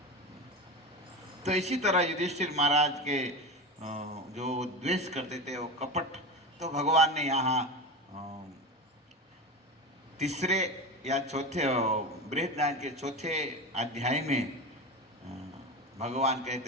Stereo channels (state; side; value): normal; both; correlation 0.24